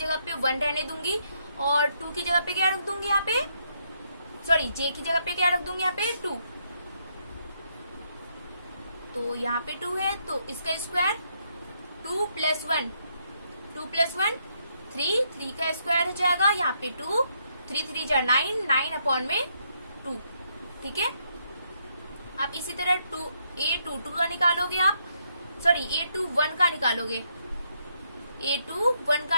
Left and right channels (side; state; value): both; inverted; correlation -0.75